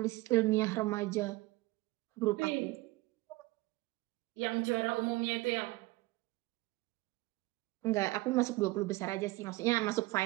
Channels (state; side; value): quieter; left; 20.9 dB